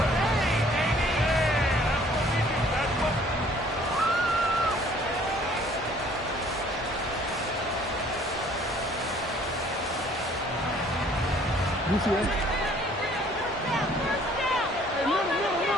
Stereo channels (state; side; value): normal; both; correlation 0.57